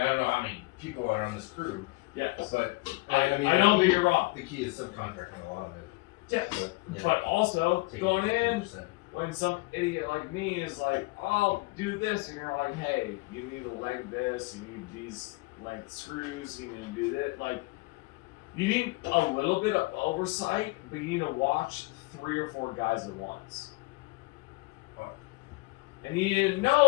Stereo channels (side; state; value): right; quieter; 23.9 dB